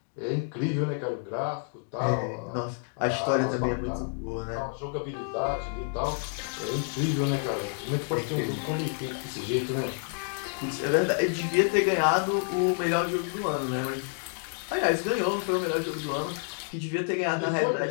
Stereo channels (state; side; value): silent; right; 58 dB below the other